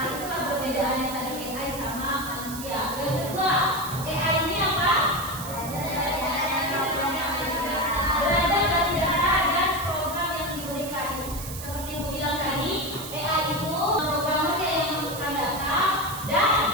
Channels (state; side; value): noise; right; hiss, 10 dB below the sound